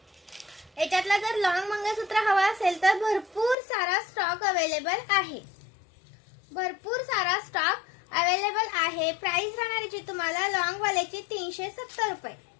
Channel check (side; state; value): right; drops out; at 3.6 s